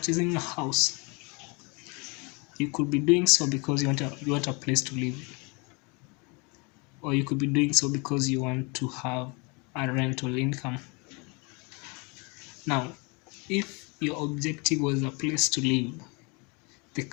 a house, you could be doing so because you want a place to live, or you could be doing so because you want to have a rental income. Now, if your objective was a place to live, the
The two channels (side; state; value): right; quieter; 30.1 dB